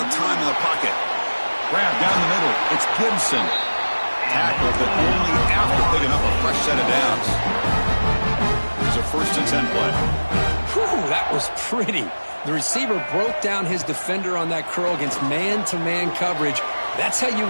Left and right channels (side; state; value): both; inverted; correlation -1.00